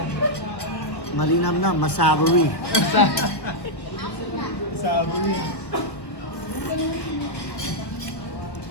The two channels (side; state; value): right; late; 1.3 ms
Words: Malinam na, masavory. Sabi.